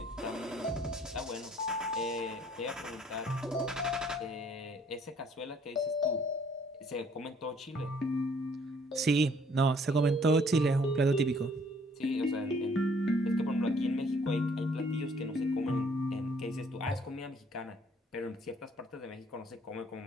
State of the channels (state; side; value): normal; both; correlation 0.61